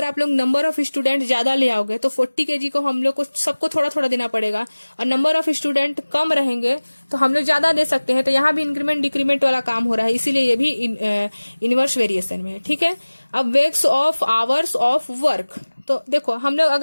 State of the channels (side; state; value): both; inverted; correlation -1.00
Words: आप लोग नंबर ऑफ स्टूडेंट ज्यादा ले आओगे तो 40 kg को हम लोग को सबको थोड़ा थोड़ा देना पड़ेगा, और नंबर ऑफ स्टूडेंट कम रहेंगे तो हम लोग ज्यादा दे सकते हैं। तो यहाँ भी इंक्रीमेंट डिक्रीमेंट वाला काम हो रहा है, इसीलिए ये भी इनवर्स वेरिएशन में है। ठीक है, अब weeks of hours of work, तो देखो हम लोग